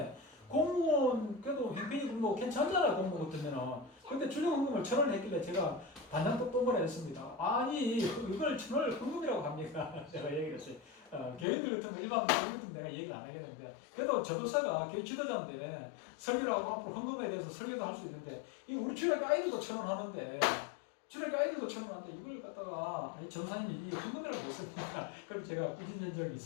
공무원 그래도 형편이 뭐 괜찮잖아요. 공무원 같으면은. 근데 주정헌금을 1,000원을 했길래 제가 반장도 똥거라 했습니다. 아니 이걸 1,000원을 헌금이라고 합니까? 제가 얘기를 했어요. 교인들 같은 거 일반 교인들 내가 얘기를 안 하겠는데 그래도 저도사가 교회 지도자인데 설교를 하고 앞으로 헌금에 대해서 설교도 할 수 있는데 이 우리 주일학교 아이들도 1,000원 하는데 주일학교 아이들도 1,000원 하는데 이걸 갖다가 전사님이 이 헌금이라고 했습니까? 그럼 제가 꾸짖은 적이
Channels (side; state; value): right; drops out; at 11.5 s